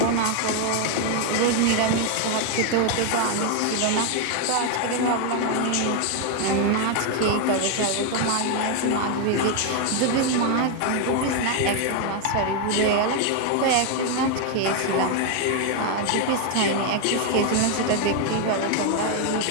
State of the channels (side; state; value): both; different; correlation 0.01